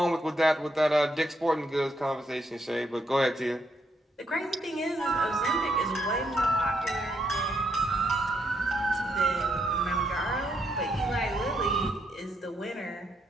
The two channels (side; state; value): both; normal; correlation 0.77